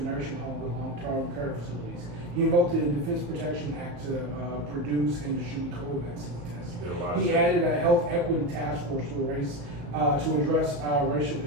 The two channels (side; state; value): left; late; 35 ms